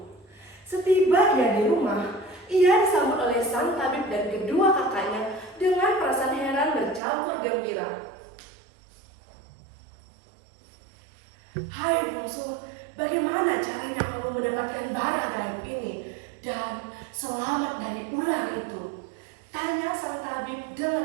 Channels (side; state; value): left; drops out; at 7.0 s